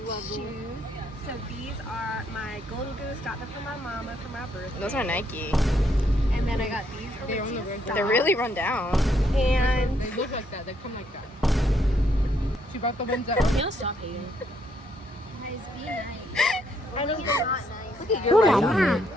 shoes. So, these are my Golden Goose. Got them for my mama for my birthday. Those are Nike. And then I got these Aritzia socks. They're really run down. And They look like that. They come like that. She brought the ones that. You'll stop hating. Guys, be nice. I think You're not nice. You're right.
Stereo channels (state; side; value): normal; both; correlation 0.73